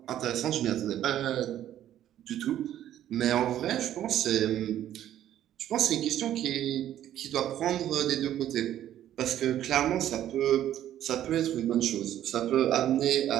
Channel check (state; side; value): quieter; left; 11.8 dB